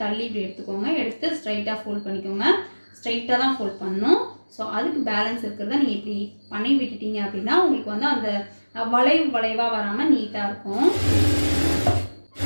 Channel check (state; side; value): inverted; both; correlation -1.00